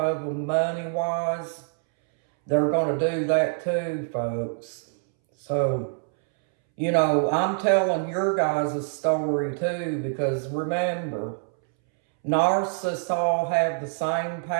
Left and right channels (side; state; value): left; silent; 62 dB below the other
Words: them money-wise. They're going to do that too, folks. So, you know, I'm telling your guys' story too, because remember, narcissists all have the same